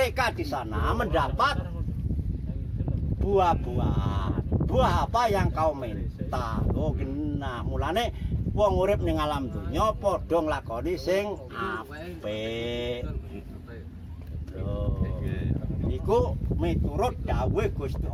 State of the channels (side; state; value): both; identical; correlation 1.00